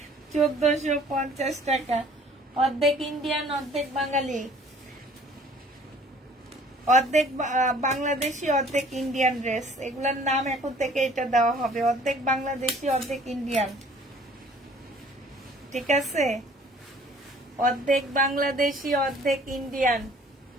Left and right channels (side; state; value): both; normal; correlation 0.54